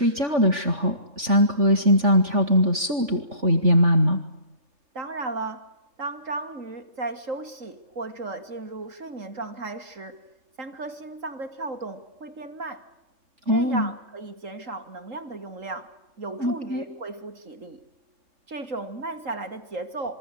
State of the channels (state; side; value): late; left; 3.5 ms